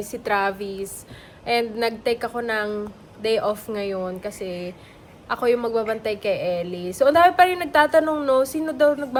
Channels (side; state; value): both; identical; correlation 1.00